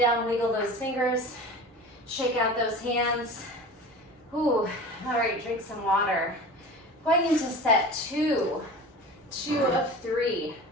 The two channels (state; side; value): normal; both; correlation 0.35